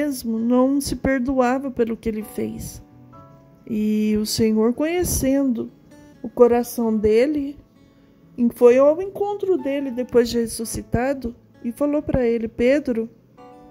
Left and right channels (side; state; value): both; identical; correlation 1.00